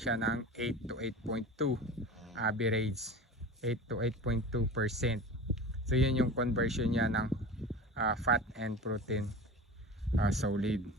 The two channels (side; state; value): both; normal; correlation 0.33